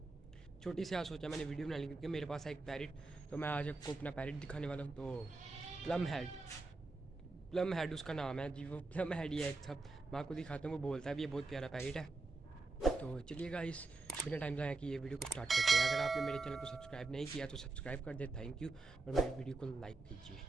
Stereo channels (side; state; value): left; quieter; 3.4 dB